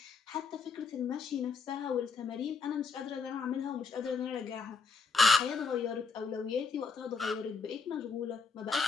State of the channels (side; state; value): right; quieter; 4.9 dB